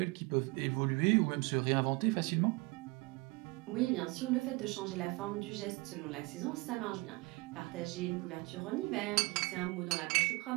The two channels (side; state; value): left; quieter; 25.3 dB